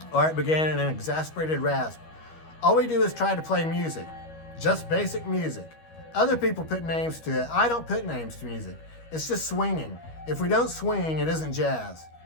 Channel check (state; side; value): late; right; 13 ms